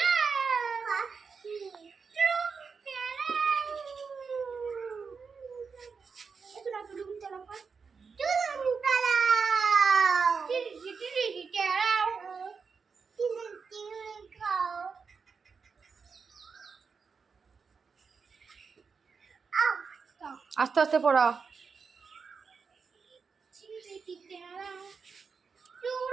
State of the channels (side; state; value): left; quieter; 5.4 dB